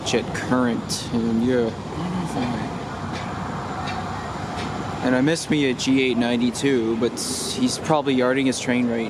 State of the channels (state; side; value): identical; both; correlation 1.00